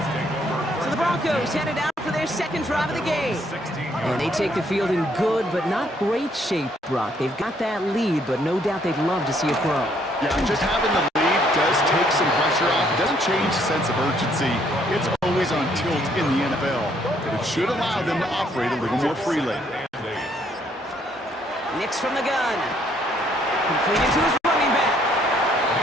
So the Broncos headed out for their second drive of the game. And they take the field in good but not great shape, Brock. They've got that lead, but no doubt they'd love to see it grow. Yeah, just having the lead does take some pressure off. It doesn't change the sense of urgency. It's always on tilt in the NFL. But it should allow them to operate a little more freely. Nix from the gun. Completed to his running back.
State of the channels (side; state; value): both; normal; correlation 0.67